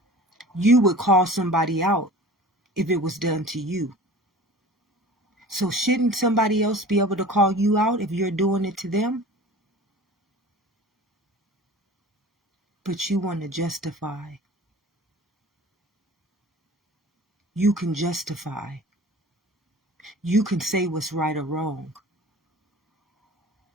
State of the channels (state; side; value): normal; both; correlation 0.41